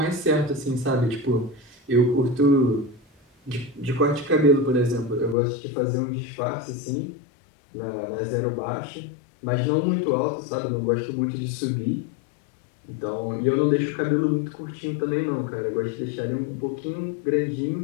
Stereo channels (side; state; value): right; drops out; at 5.4 s